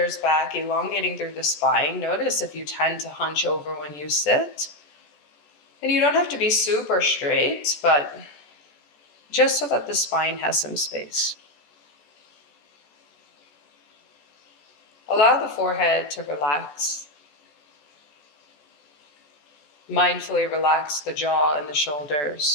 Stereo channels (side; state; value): right; late; 14 ms